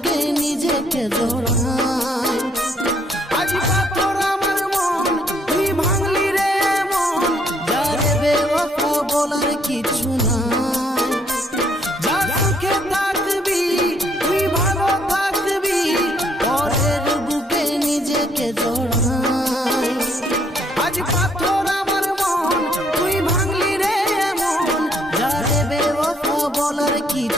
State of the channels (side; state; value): both; normal; correlation 0.68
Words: নিজেকে জড়াই আজ পাথর আমার মন তুই ভাঙলি রে মন যারে বেওয়াফা বলার কিছু নাই যা সুখে থাকবি তুই ভালো থাকবি পরের বুকে নিজেকে জড়াই আজ পাথর আমার মন তুই ভাঙলি রে মন যারে বেওয়াফা বলার